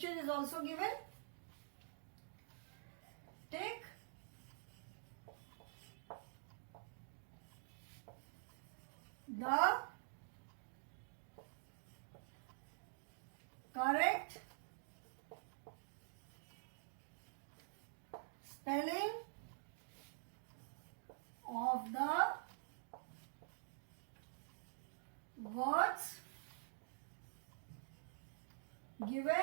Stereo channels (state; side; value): silent; left; digital silence